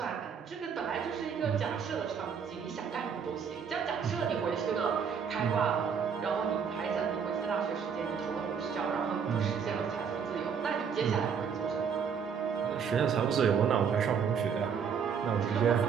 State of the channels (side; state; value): left; quieter; 6.8 dB